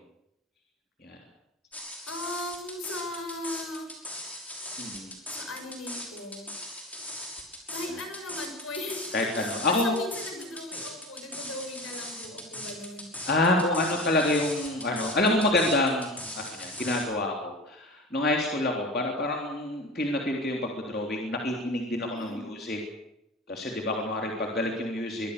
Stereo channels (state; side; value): normal; both; correlation 0.32